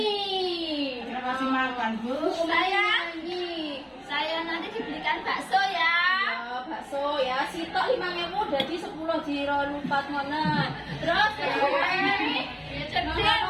Kita kasih makan, Bu. Saya nanti dibelikan bakso ya. Ya, bakso ya, sitok 5.000 jadi 10 jiro lupat mana. Terus jasa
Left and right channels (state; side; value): identical; both; correlation 1.00